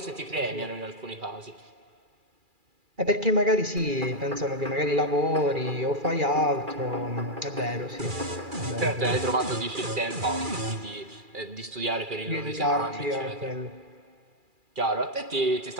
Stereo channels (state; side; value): late; left; 2.4 ms